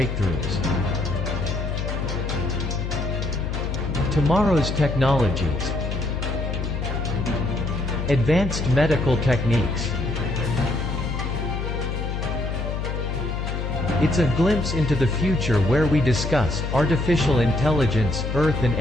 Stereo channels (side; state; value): left; noise; hum, 3 dB below the sound